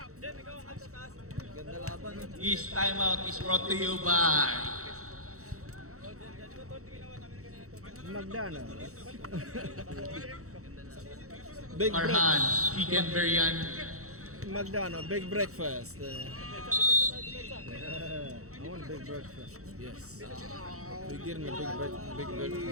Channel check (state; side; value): late; left; 0.65 ms